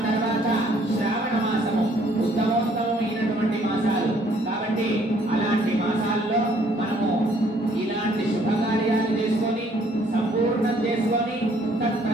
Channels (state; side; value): normal; both; correlation 0.62